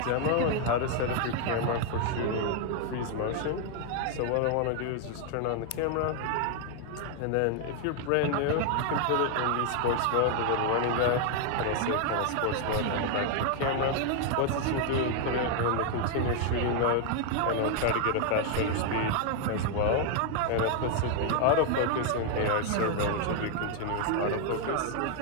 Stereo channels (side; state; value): both; different; correlation 0.00